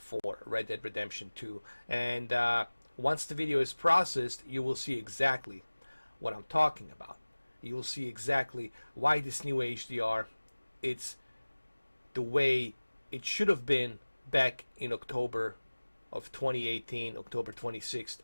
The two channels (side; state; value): both; inverted; correlation -1.00